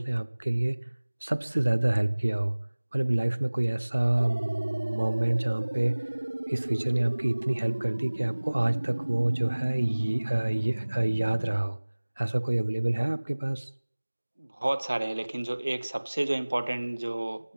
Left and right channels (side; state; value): both; inverted; correlation -1.00